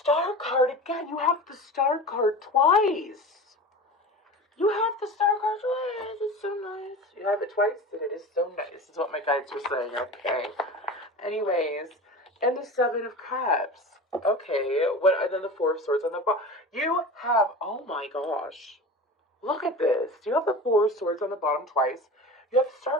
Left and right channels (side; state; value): both; normal; correlation 0.32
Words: Star card, again, you have the Star card twice. You have the star card twice. It's so nice. You have it twice, and it is so nice. Is what my guides were saying. Okay. Anyways, and the Seven of Cups. Okay. What? And then the Four of Swords on the bottom. You have. Oh my gosh. Look at this. You have the Four of Swords on the bottom twice. You have the